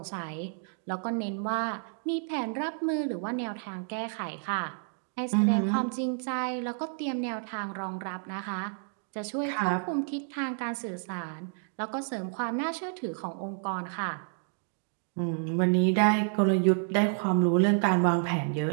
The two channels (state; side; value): silent; left; 58 dB below the other